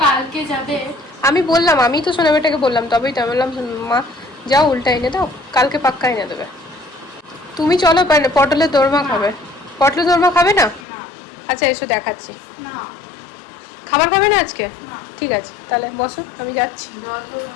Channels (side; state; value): right; drops out; at 10.9 s